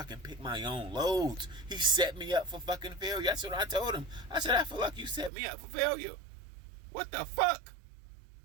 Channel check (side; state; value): left; drops out; at 5.3 s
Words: can pick my own loads. He set me up for fucking failure. That's what I told him. I said, I feel like you set me up for failure. What the fuck?